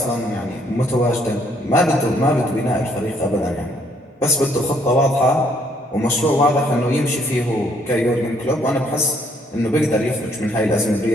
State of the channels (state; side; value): normal; both; correlation 0.67